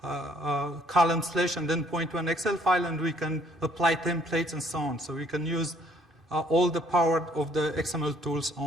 column slash and then point to an Excel file, and we can apply templates and so on. So we can use all the power of the XML tools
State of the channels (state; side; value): normal; both; correlation 0.62